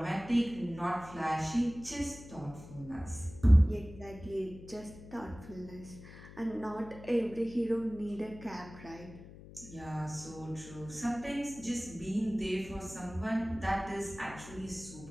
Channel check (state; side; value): noise; left; hum, 16 dB below the sound